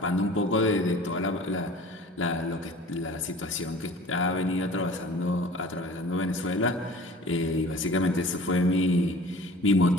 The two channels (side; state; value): both; normal; correlation 0.44